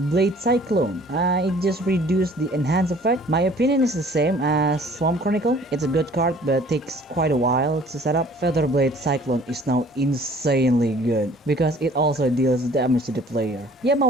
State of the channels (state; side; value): normal; both; correlation 0.53